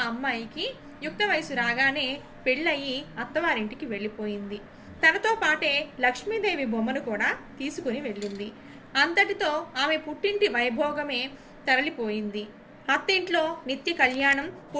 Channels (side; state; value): both; identical; correlation 1.00